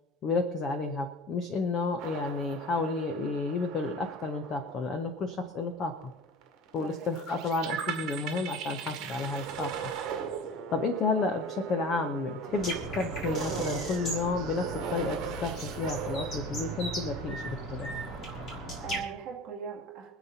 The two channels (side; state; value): both; normal; correlation 0.38